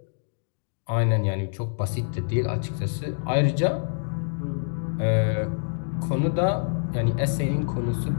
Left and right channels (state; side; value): silent; right; digital silence